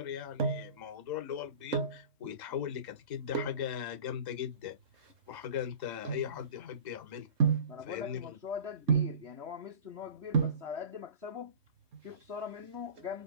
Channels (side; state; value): left; late; 3.2 ms